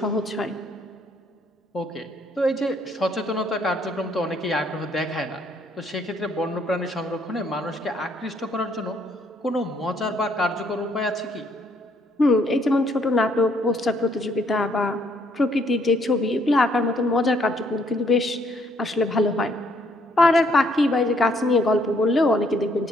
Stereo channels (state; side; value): normal; both; correlation 0.68